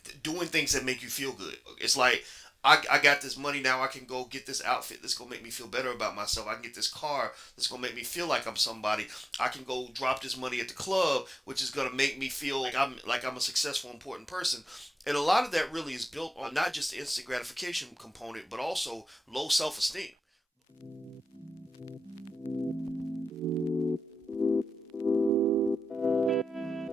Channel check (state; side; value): normal; both; correlation 0.94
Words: doing things that make you feel good. It's like, I got this money now, I can go get this outfit that's going to make me feel better about myself. I can get this car that's going to make me feel like I'm somebody. I can go drop this money at the club, which is going to make me feel like I'm a successful, important person. And a lot of that really is built on not just the instant gratification component, but also low self-esteem.